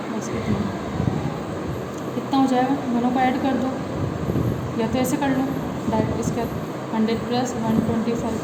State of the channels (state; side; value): identical; both; correlation 1.00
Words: बस कितना हो जाएगा, दोनों को ऐड कर दो, या तो ऐसे कर लो डायरेक्ट, इसके 100 प्लस 125